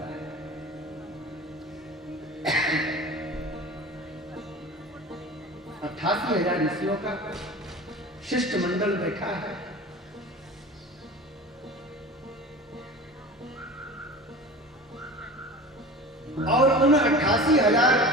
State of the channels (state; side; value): normal; both; correlation 0.36